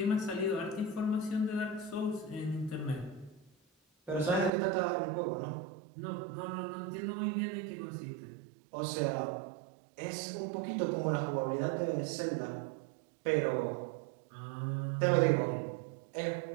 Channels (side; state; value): left; drops out; at 4.5 s